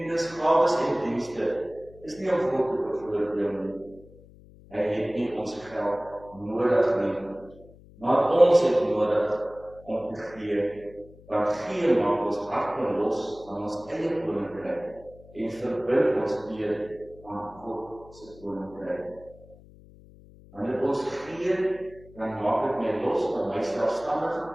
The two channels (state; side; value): noise; left; hum, 23 dB below the sound